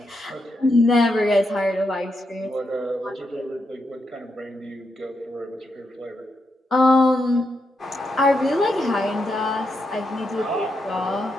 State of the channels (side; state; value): both; normal; correlation 0.83